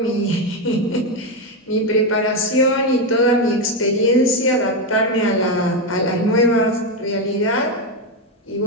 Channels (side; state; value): both; normal; correlation 0.09